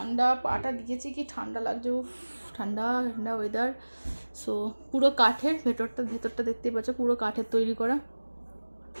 পাটা দিয়েছি কি ঠান্ডা লাগছে, ঠান্ডা ঠান্ডা ওয়েদার। সো পুরো কাঠের, ভেতরটা দেখতেই পাচ্ছ পুরো কাঠের তৈরি করা।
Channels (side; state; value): both; inverted; correlation -1.00